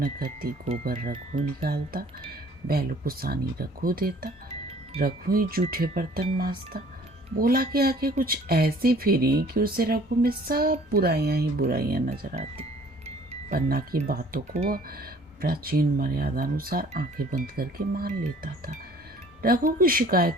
करती। गोबर रघु निकालता, बैलों को सानी रघु देता, रघु ही जूठे बर्तन मांजता। बोला के आके कुछ ऐसी फिरी कि उसे रघु में सब बुराइयां ही बुराइयां नजर आती। पन्ना की बातों को वह प्राचीन मर्यादा अनुसार आंखें बंद करके मान लेता था। रघु की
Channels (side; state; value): both; normal; correlation 0.54